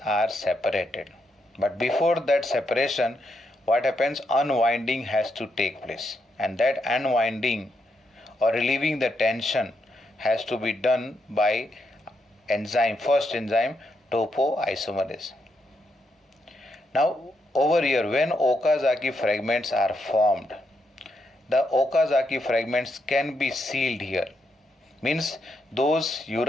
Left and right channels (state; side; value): normal; both; correlation 0.80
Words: are separated. But before that separation, what happens, unwinding has to take place, and that unwinding or relieving the tension has to be done by enzyme, first enzyme topoisomerase. Now over here, when Okazaki fragments are formed, the Okazaki fragments can be sealed here. Means those